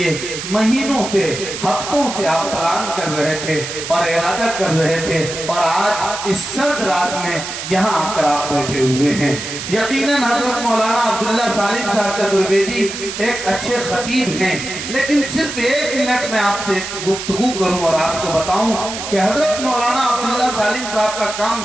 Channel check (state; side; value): noise; right; hiss, 7 dB below the sound